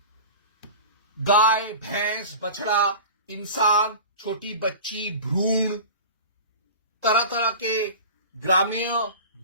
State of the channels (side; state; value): both; inverted; correlation -0.35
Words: गाय, भैंस, बछड़ा, इंसान, छोटी बच्ची, भ्रूण, तरह तरह के ग्रामीण